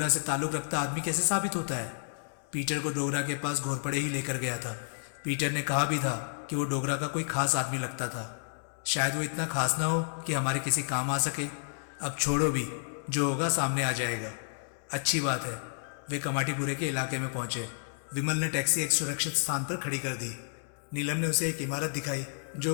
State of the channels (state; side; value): silent; right; 57 dB below the other